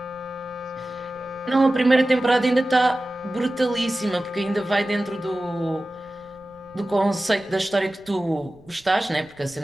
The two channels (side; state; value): right; noise; rumble, 27 dB below the sound